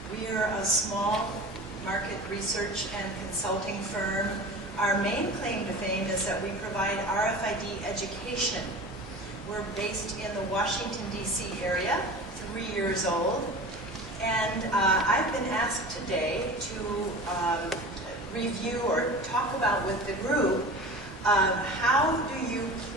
We are a small market research and consulting firm. Our main claim to fame is that we provide RFID education. We're based in the Washington, D.C. area, 3 years old. And I've been asked today to review or talk about with the group how do you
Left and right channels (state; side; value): normal; both; correlation 0.36